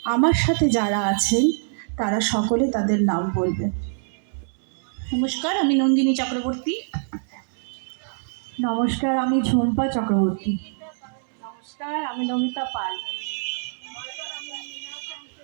আমার সাথে যারা আছেন তারা সকলে তাদের নাম বলবেন। নমস্কার, আমি নন্দিনী চক্রবর্তী। নমস্কার, আমি ঝুম্পা চক্রবর্তী। নমস্কার, আমি নমিতা পাল।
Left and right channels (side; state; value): left; silent; 62 dB below the other